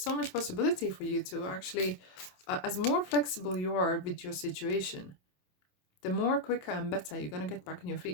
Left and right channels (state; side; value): late; right; 27 ms